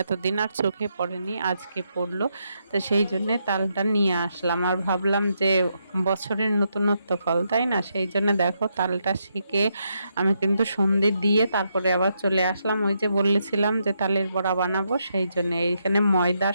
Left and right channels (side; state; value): both; inverted; correlation -0.80